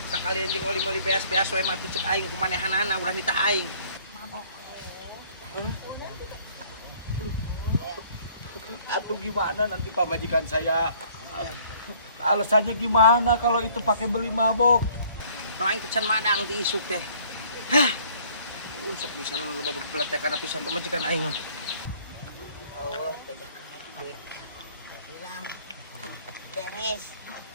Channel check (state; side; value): inverted; both; correlation -0.58